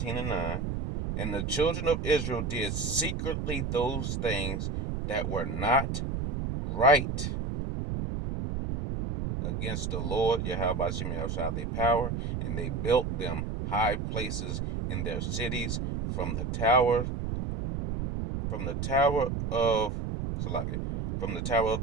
and 9. And the children of Israel did secretly those things that were not right against the Lord Yahweh Shem Shai their power, and they built them high places in their cities from the tower of Salaki, from the tower of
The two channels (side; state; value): right; noise; rumble, 3 dB below the sound